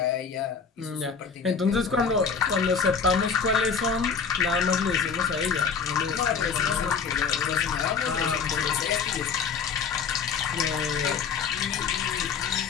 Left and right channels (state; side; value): quieter; right; 5.9 dB